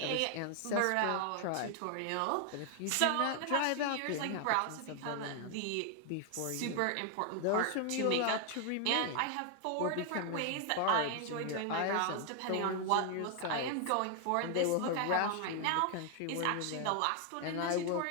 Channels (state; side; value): different; both; correlation 0.00